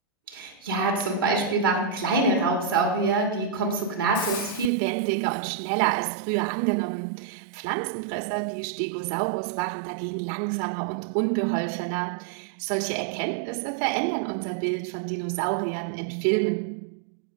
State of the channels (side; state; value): left; drops out; at 4.7 s